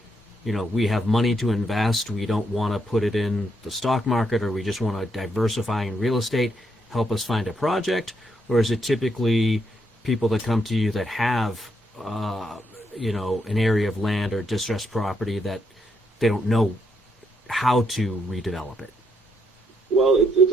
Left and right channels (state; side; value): normal; both; correlation 0.77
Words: we have money to invest, we don't want to put it in the stock market, or we just want to diversify in real estate, help us find a project? Or is it typically people that come to you that have an area of land or distressed property that they don't know how to redevelop it? Well, it's